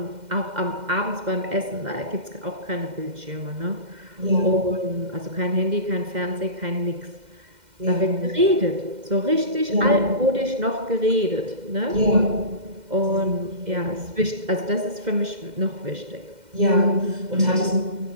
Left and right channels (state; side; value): late; left; 2.1 ms